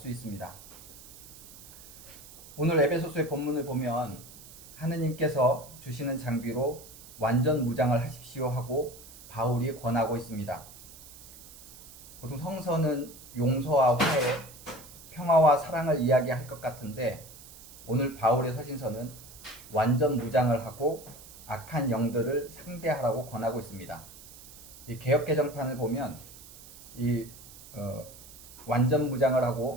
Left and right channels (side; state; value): right; noise; hiss, 18 dB below the sound